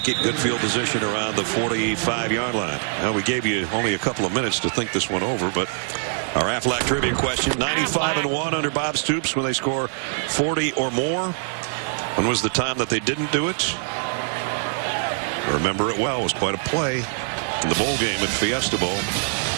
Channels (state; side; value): silent; left; digital silence